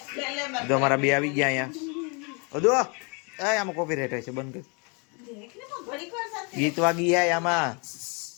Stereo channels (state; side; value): quieter; right; 33.3 dB